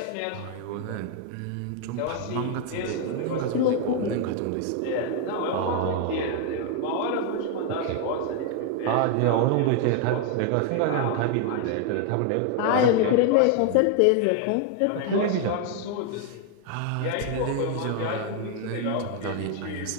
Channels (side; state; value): both; different; correlation 0.00